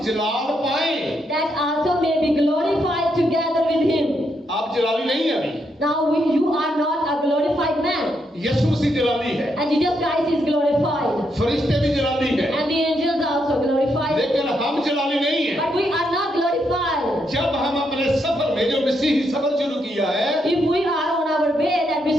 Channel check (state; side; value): normal; both; correlation 0.79